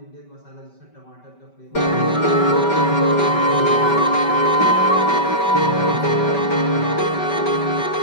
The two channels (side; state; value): right; late; 5.2 ms